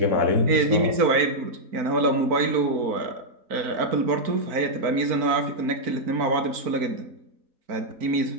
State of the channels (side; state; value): left; late; 4.4 ms